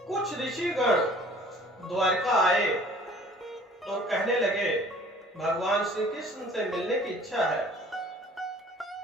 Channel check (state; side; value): normal; both; correlation 0.52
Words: कुछ ऋषिगण द्वारका आए और कहने लगे, भगवान श्री कृष्ण से मिलने की इच्छा है।